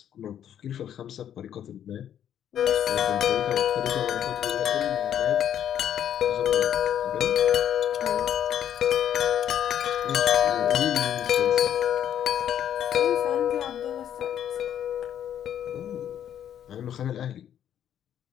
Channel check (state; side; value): quieter; right; 10.0 dB